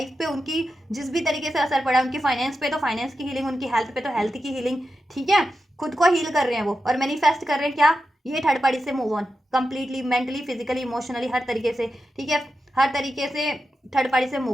पे उनकी जिस भी तरीके से असर पड़ा, उनकी फाइनेंस पे तो फाइनेंस की हीलिंग, उनकी हेल्थ पे तो हेल्थ की हीलिंग, ठीक है, खुद को हील कर रहे हैं वो, और मैनिफेस्ट कर रहे हैं क्या, ये थर्ड पार्टी से move on completely, mentally, physically, emotionally, हर तरीके से, ठीक है, हर तरीके से थर्ड पार्टी से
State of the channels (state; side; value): normal; both; correlation 0.89